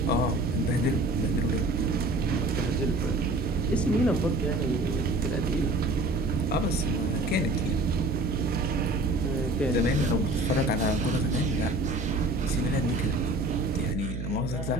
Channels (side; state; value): right; noise; hum, 5 dB below the sound